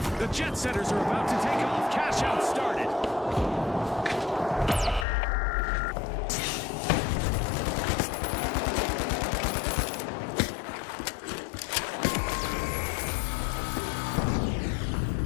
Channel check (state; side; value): drops out; right; at 5.1 s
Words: The Jet Setters are about to take off. Cash out started.